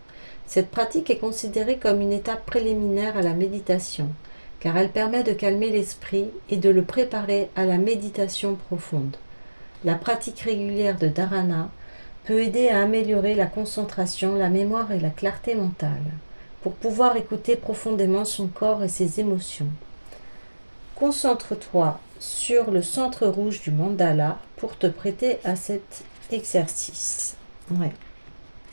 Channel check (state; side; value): inverted; both; correlation -1.00